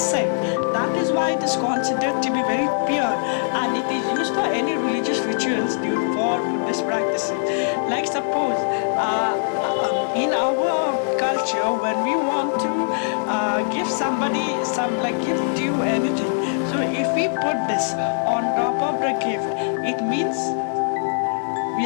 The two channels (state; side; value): silent; right; digital silence